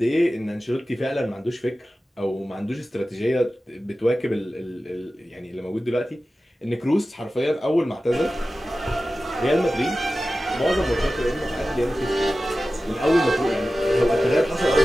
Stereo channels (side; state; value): both; normal; correlation 0.95